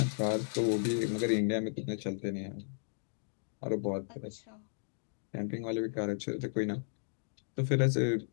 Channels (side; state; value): right; silent; digital silence